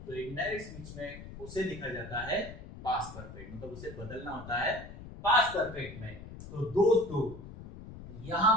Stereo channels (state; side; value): noise; left; rumble, 13 dB below the sound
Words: तो इनडायरेक्ट स्पीच में उसे लिखा जाता है पास्ट परफेक्ट, मतलब उसे बदलना होता है पास्ट परफेक्ट में। तो दोस्तों यहां